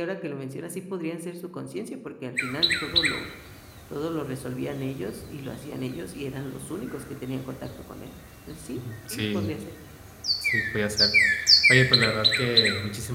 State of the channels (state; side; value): identical; both; correlation 1.00